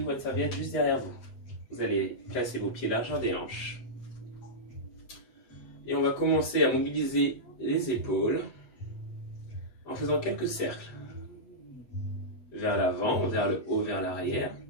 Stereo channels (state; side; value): late; right; 8.1 ms